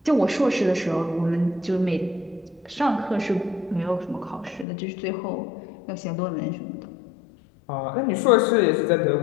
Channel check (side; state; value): right; drops out; at 4.7 s